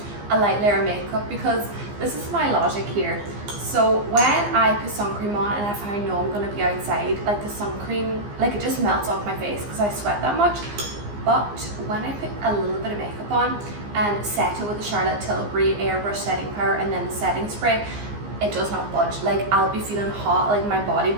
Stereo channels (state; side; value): late; left; 15 ms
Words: a light layer of makeup because this is my logic here. So when I put sun cream on and if I know I'm going to be outside, like the sun cream, like it just melts off my face because I sweat that much. But when I put a little bit of makeup on and set it with the Charlotte Tilbury airbrush setting powder and then the setting spray, it does not budge. Like I'll be feeling hot, like my body